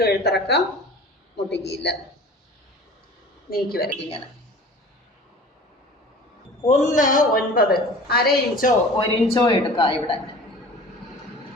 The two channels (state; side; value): normal; both; correlation 0.42